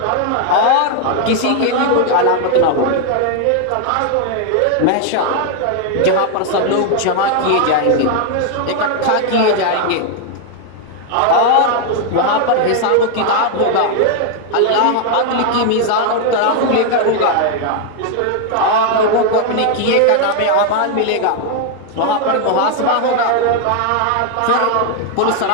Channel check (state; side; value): different; both; correlation 0.00